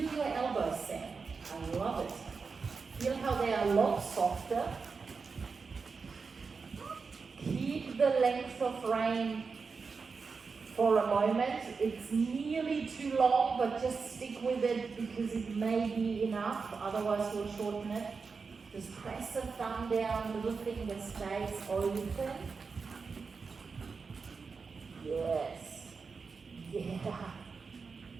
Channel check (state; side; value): quieter; left; 4.9 dB